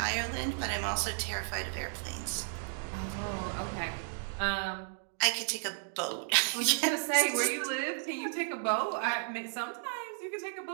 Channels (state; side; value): silent; left; digital silence